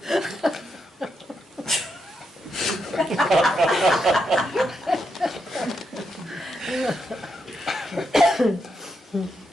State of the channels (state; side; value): normal; both; correlation 0.82